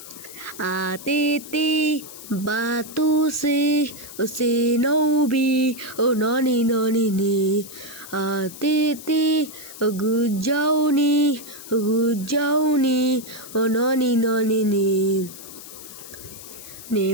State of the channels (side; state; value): left; noise; hiss, 15 dB below the sound